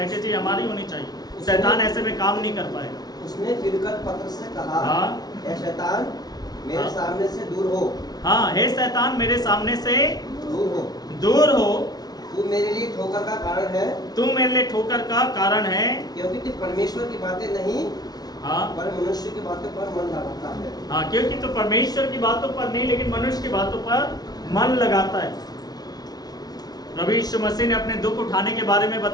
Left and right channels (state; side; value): late; right; 0.19 ms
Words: हमारी होनी चाहिए। शैतान ऐसे में काम नहीं कर पाएगा। उसने फिरकर पतरस से कहा, हाँ। हे शैतान मेरे हाँ। सामने से दूर हो। हाँ, हे शैतान मेरे सामने से दूर हो। दूर हो। तू मेरे लिए ठोकर का कारण है। तू मेरे लिए ठोकर का कारण है, क्योंकि तू परमेश्वर की बातें नहीं, हाँ, पर मनुष्य की बातों पर मन लगाता है। हाँ, क्योंकि तू परमेश्वर की बातों पर नहीं लेकिन मनुष्य की बातों पर मन लगाता है। प्रभु यीशु मसीह ने अपने दुख उठाने के बारे में